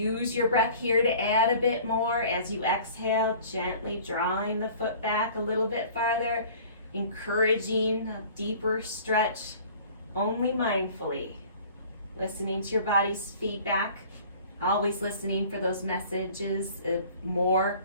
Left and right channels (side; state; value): both; inverted; correlation -0.48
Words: your breath here to add a bit more as you exhale, gently drawing the foot back a little bit farther, encouraging a deeper stretch, only mindfully. Listening to your body's feedback, always listening for those messages of more,